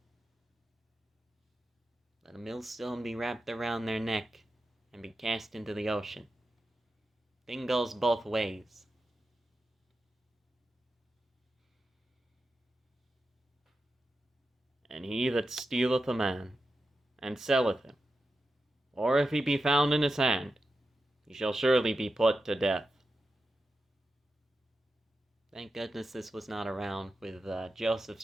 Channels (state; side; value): normal; both; correlation 0.91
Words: let a millstone be wrapped around their neck and be cast into the ocean. Thing goes both ways. And he that stealeth a man, and selleth him, or if he be found in his hand, he shall surely be put to death. Thank goodness this was not around with Joseph's